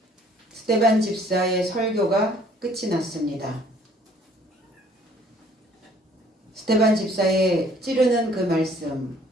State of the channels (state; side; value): normal; both; correlation 0.59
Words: 스테반 집사의 설교가 끝이 났습니다. 스테반 집사의 찌르는 그 말씀,